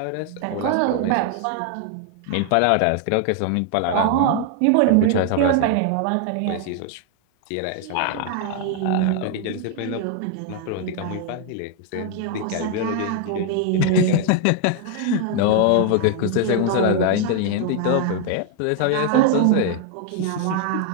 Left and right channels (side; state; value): both; different; correlation 0.00